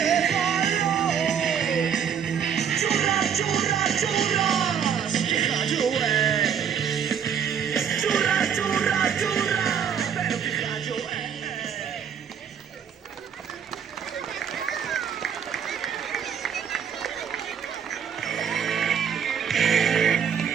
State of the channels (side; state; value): left; quieter; 7.9 dB